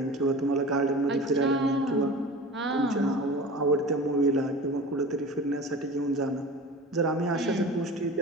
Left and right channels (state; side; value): normal; both; correlation 0.36